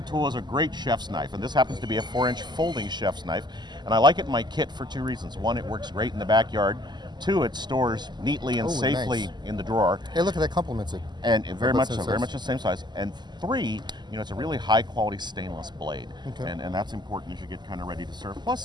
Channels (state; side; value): late; left; 0.21 ms